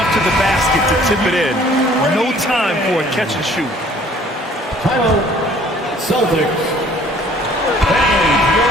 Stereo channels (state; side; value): normal; both; correlation 0.56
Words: to the basket to tip it in. No time for a catch and shoot. Timeout, Celtics. And